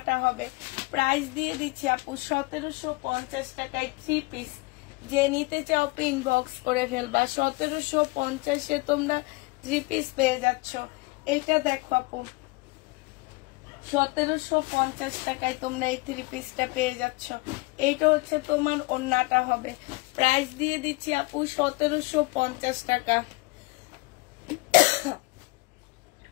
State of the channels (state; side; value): quieter; right; 25.3 dB